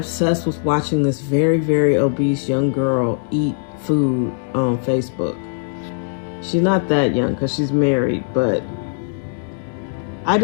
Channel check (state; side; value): silent; right; 66 dB below the other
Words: with watching this very, very obese young girl eat food on Facebook? She's not that young because she's married, but I